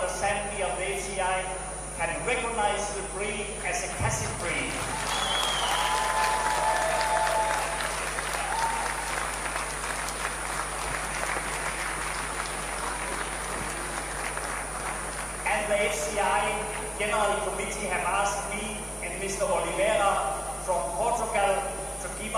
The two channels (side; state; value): both; identical; correlation 1.00